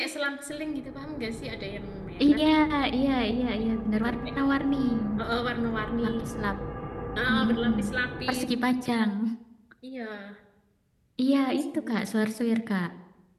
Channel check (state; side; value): identical; both; correlation 1.00